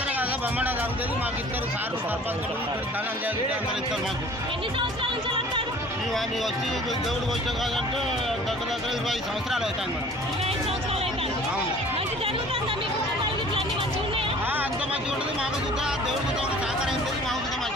కదా, బొమ్మడం జరుగుతుంది. మాకు ఇద్దరు సార్లు సర్పంచులు ఇక్కడ ధనం చేసి అందరు ఇస్తారు మాకు. మేము వచ్చి దేవుడికి వచ్చాం కాదంటే దగ్గర 25 సంవత్సరాలు అవుతాయి మేడం. అవును అంత మంచిగా ఉంటుంది. మాకు చూద్దా దేవుడికి సహకారం ఉంటుంది, మాకు చూద్దా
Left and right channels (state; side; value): normal; both; correlation 0.49